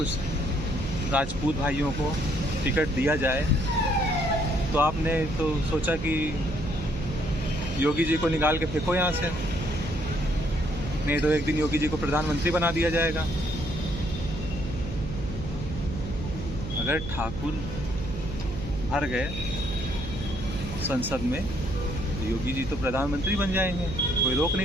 राजपूत भाइयों को टिकट दिया जाए, तो आपने तो सोचा कि योगी जी को निकाल के फेंको यहाँ से, नहीं तो एक दिन योगी जी को प्रधानमंत्री बना दिया जाएगा। अगर ठाकुर भर गए संसद में तो योगी जी तो प्रधानमंत्री बन जाएंगे, कोई रोक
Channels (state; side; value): noise; right; hum, 8 dB below the sound